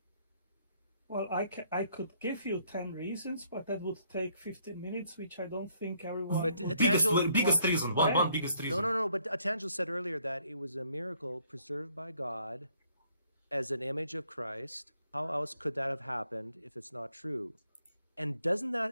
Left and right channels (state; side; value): inverted; both; correlation -0.67